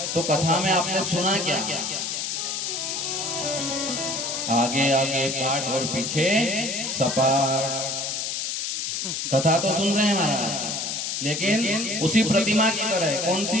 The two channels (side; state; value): left; noise; hiss, 2 dB below the sound